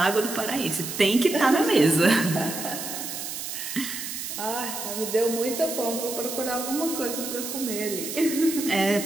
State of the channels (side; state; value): right; noise; hiss, 6 dB below the sound